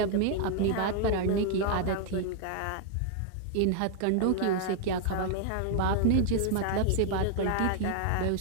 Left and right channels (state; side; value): different; both; correlation 0.00